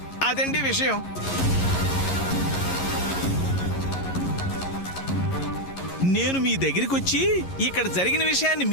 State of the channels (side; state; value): right; late; 11 ms